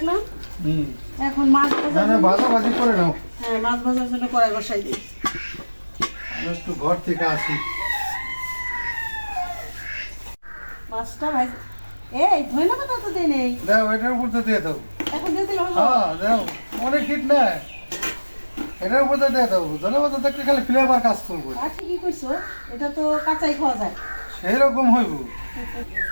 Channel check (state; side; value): inverted; both; correlation -1.00